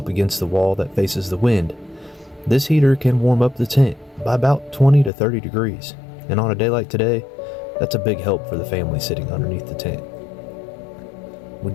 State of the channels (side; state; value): right; drops out; at 5.1 s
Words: against the wall that faces the wind, this heater can warm up the tent by about 20 to 30 degrees. And on a day like today, that's a big help for the family sitting underneath the tent. We